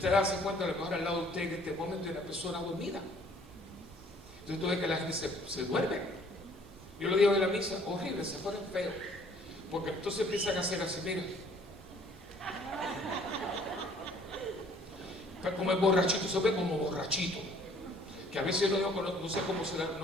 hace cuenta, a lo mejor al lado de usted en este momento hay una persona dormida. Entonces tú ves que la gente se duerme. Yo lo digo en la misa, horrible, se ponen feos. Porque entonces empiezan a hacer así, mira. Como el borrachito, se ve como borrachito. Que a veces yo no sé cómo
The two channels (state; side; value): normal; both; correlation 0.58